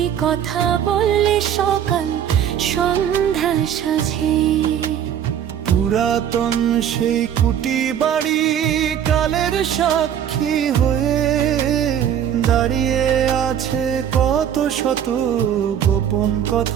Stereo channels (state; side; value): quieter; left; 9.4 dB